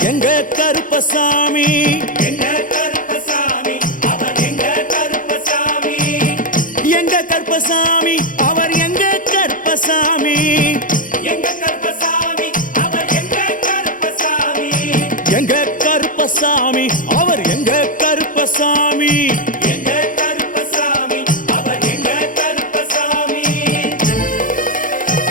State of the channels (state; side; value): late; right; 0.39 ms